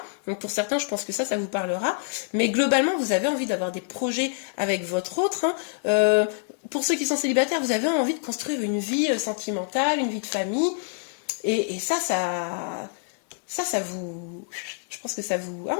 Donc pour certains, je pense que ça vous parlera. Mais globalement, vous avez envie d'avoir des projets avec votre autre. Hein. Pour ceux qui sont célibataires, vous avez envie de construire une vie sentimentale, une vie de famille. Et ça vous... Je pense que ça vous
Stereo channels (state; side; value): silent; right; 61 dB below the other